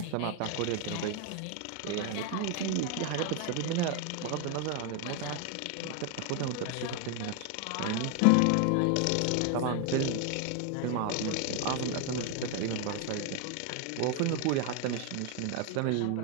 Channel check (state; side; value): different; both; correlation 0.01